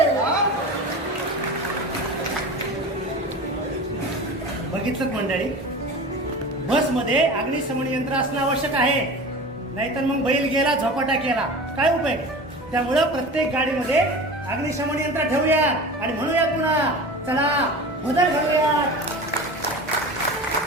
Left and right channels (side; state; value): both; normal; correlation 0.33